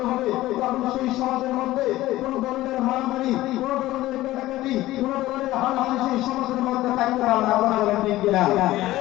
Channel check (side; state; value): right; quieter; 16.4 dB